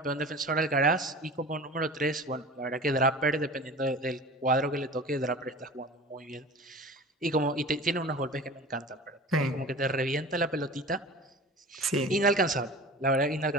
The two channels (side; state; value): both; normal; correlation 0.37